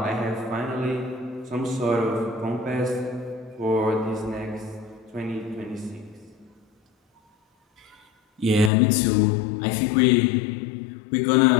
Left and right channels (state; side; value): drops out; right; at 8.7 s